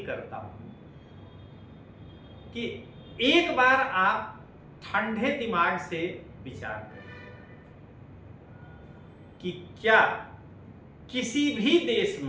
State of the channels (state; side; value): identical; both; correlation 1.00